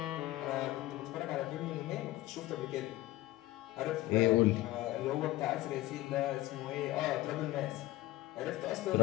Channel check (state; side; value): quieter; right; 16.8 dB